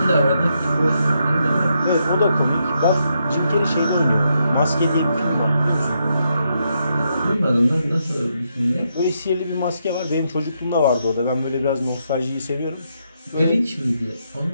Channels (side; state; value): both; inverted; correlation -0.80